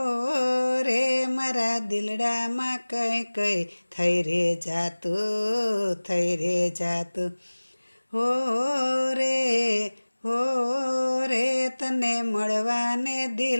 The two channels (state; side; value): inverted; both; correlation -1.00